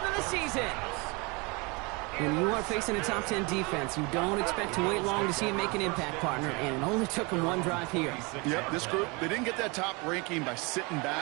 of the season. When you are facing a top 10 defense, you don't expect to wait long to see him make an impact, partner, and it only took him one drive here. Yep, this group, they didn't get that top ranking by sitting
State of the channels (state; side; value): quieter; left; 28.0 dB